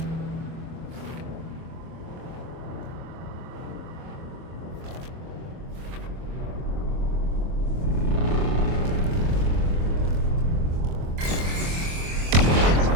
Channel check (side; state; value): left; late; 24 ms